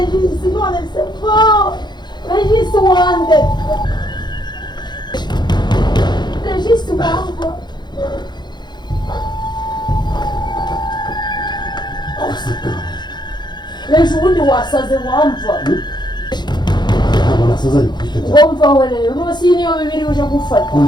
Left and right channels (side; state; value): right; late; 0.21 ms